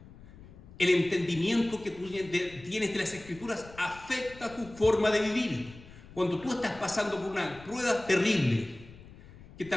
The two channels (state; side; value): noise; left; rumble, 19 dB below the sound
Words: El entendimiento que tú tienes de las Escrituras afecta tu forma de vivir. Cuando tú estás pasando por una prueba terrible, que